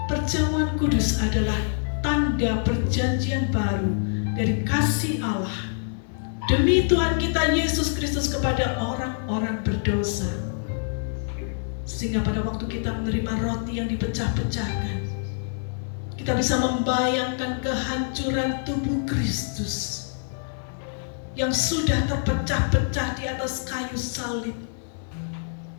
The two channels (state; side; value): silent; right; 61 dB below the other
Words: Perjamuan kudus adalah tanda perjanjian baru dari kasih Allah demi Tuhan kita Yesus Kristus kepada orang-orang berdosa. Sehingga pada waktu kita menerima roti yang dipecah-pecahkan, kita bisa membayangkan kehancuran tubuh Kristus yang sudah terpecah-pecah di atas kayu salib.